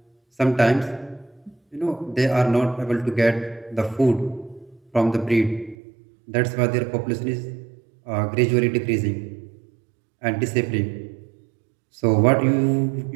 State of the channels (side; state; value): left; drops out; at 5.8 s